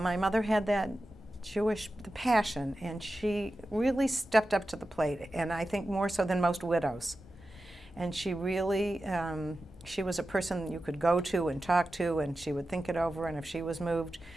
mother had that Jewish passion, and she really stepped up to the plate, and I think more so than most widows. And she really, she was a person you could go to and talk to, and she would think it over, and if she was moved,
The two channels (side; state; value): both; normal; correlation 0.93